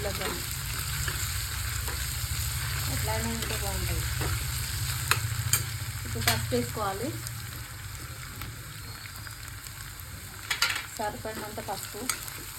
కానీ ఎట్లయినా ఉంటే బాగుంటుంది. ఇప్పుడు పసుపు వేసుకోవాలి, సరిపడినంత పసుపు.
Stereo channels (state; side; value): identical; both; correlation 1.00